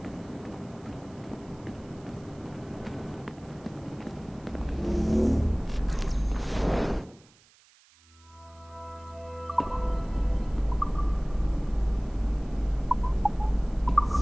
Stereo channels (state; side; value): noise; right; hiss, 28 dB below the sound